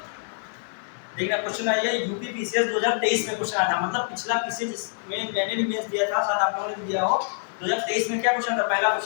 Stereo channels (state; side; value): silent; right; 61 dB below the other